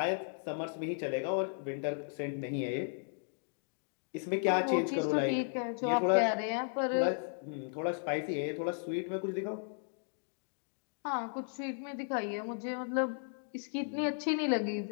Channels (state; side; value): silent; right; digital silence